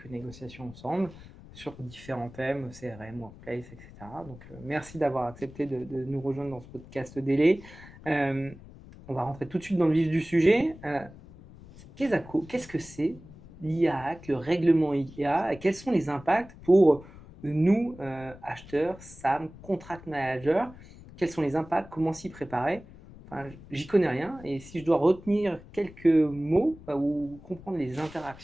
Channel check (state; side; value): noise; left; rumble, 19 dB below the sound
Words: négociations ensemble sur différents thèmes, CRM, Workplace, etc. Donc, merci d'avoir accepté de nous rejoindre dans ce podcast d'Ele. On va rentrer tout de suite dans le vif du sujet. Qu'est-ce que c'est l'IA Act, le règlement IA, et quels sont les impacts pour nous, acheteurs, SAM, contract managers? Quels sont les impacts? Comment s'y préparer? Enfin, j'y connais rien, et si je dois retenir quelques mots ou comprendre les